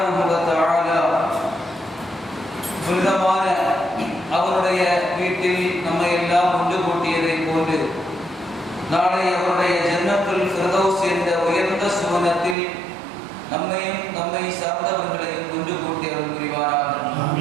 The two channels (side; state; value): left; drops out; at 12.6 s